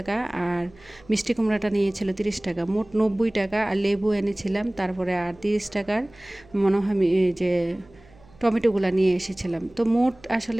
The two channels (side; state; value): right; noise; hum, 27 dB below the sound